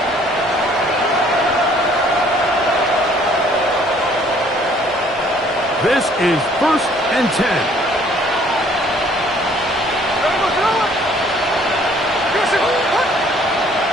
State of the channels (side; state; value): both; normal; correlation 0.59